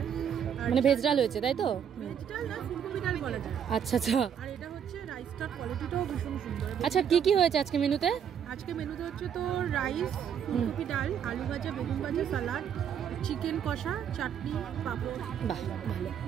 মানে ভেজ ডাল হয়েছে তাই তো? ভেজ ডাল না, ফুলকপি ডাল বলা যায়। আচ্ছা আচ্ছা। আর এটা হচ্ছে রাইসটার কোয়ালিটিটাও ভীষণ সুন্দর। আচ্ছা কি কি হয়েছে আজকে মেনুতে? আজকে মেনুতে হচ্ছে তো রাইস, ফুলকপি ডাল, আলু ভাজা, বেগুন ভাজা, সালাড, চিকেন কষা, চাটনি, পাঁপড়। বাহ ভালো।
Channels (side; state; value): left; quieter; 8.3 dB